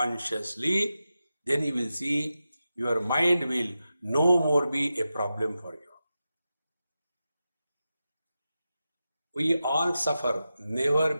then you will see your mind will no more be a problem for you. We all suffer never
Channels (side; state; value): both; inverted; correlation -0.91